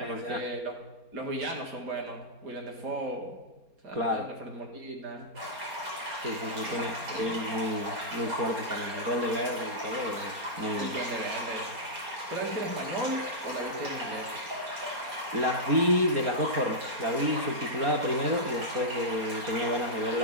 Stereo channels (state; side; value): late; left; 4.3 ms